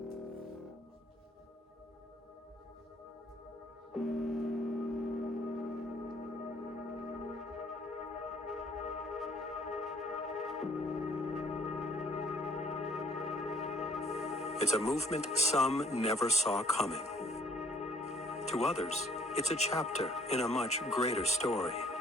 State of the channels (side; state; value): both; normal; correlation 0.61